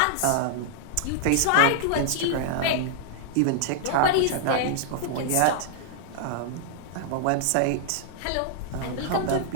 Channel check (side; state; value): both; different; correlation -0.01